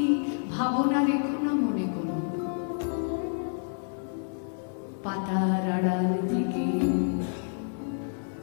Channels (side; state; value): right; silent; digital silence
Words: ভাবনা রেখো না মনে করো। পাতার আড়াল থেকে